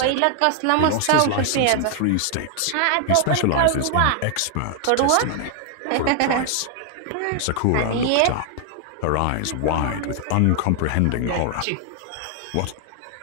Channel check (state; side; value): different; both; correlation 0.00